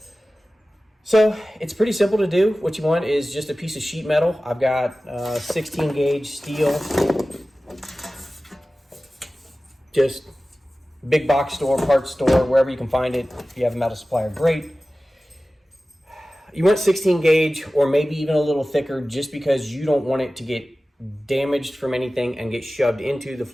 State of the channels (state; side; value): normal; both; correlation 0.96